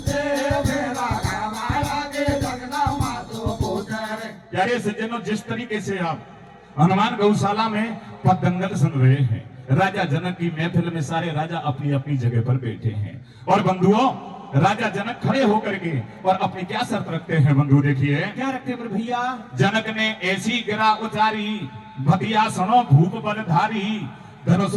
तेरा खावा लागे लगना पासो बोझले। प्यारे सज्जनों, जिस तरीके से आप हनुमान गौशाला में पतंगल सुन रहे हैं, राजा जनक की महफिल में सारे राजा अपनी अपनी जगह पर बैठे हैं। और बंधुओं, राजा जनक खड़े होकर के और अपनी क्या शर्त रखते हैं बंधु, देखिए क्या रखते हैं भैया? जनक ने ऐसी गिरा उचारी, भतिया सुनो भूप बलधारी। धनुष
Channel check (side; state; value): both; identical; correlation 1.00